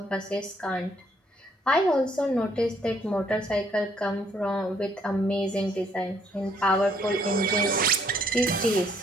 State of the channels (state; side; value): normal; both; correlation 0.67